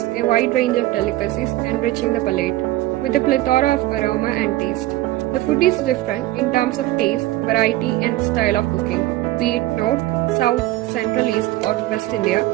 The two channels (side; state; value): left; quieter; 16.7 dB